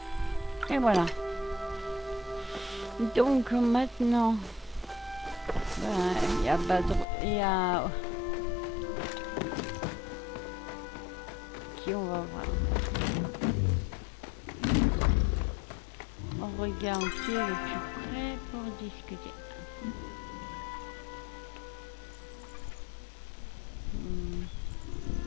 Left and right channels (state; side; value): drops out; right; at 7.1 s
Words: Et voilà. Donc maintenant, il y a Badr, il y a qui on va voir. On regarde qui est le plus près pour discuter.